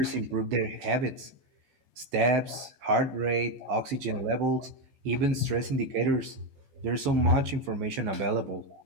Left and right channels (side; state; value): left; late; 14 ms